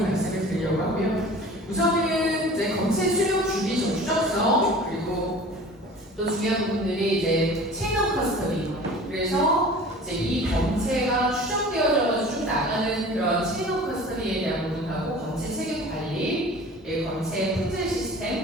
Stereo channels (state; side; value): normal; both; correlation 0.42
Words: 말씀을 드리려고 하고요. 우선은 이제 검체 수용 주기 추적성 그리고 또 중요한 부분들이 이제 체인 오브 커스터디. 그래서 이제 이 검체가 추정되어져서 쭉 나가는 그런 체인 오브 커스터디에 대한 부분하고 검체 책임 관리, 검체 품질